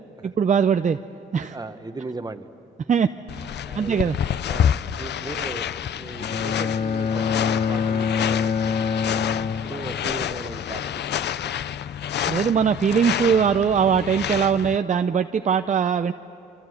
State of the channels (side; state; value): both; normal; correlation 0.49